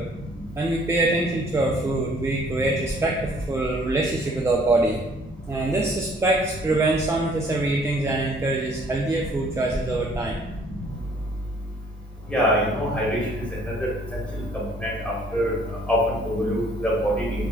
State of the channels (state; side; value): normal; both; correlation 0.59